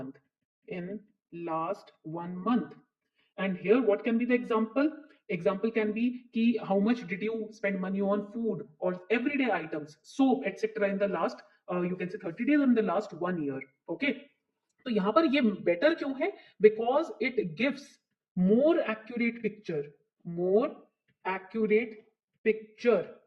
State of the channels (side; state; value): both; identical; correlation 1.00